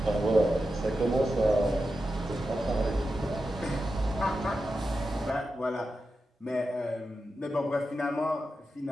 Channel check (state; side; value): normal; both; correlation 0.90